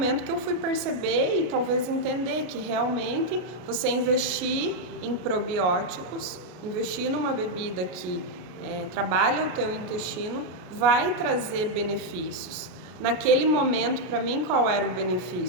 que eu fui perceber e talvez entender que realmente você investir em probióticos, investir numa bebida que trabalha o teu intestino, vai trazer benefícios. Naquele momento, para mim, qual era o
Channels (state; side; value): late; left; 33 ms